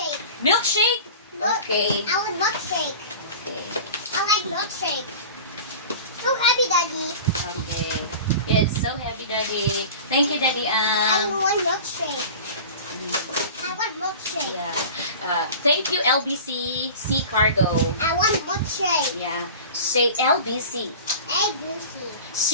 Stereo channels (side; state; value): both; inverted; correlation -0.37